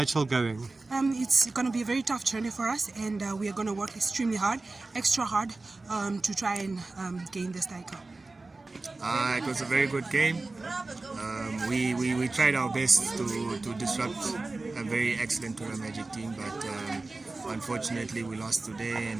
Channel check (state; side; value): quieter; left; 3.4 dB